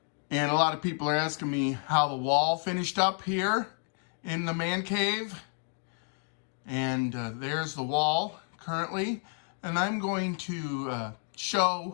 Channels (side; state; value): right; quieter; 39.4 dB